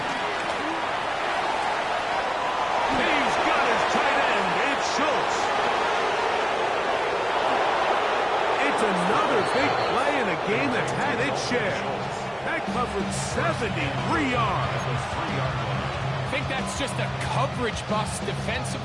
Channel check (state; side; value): identical; both; correlation 1.00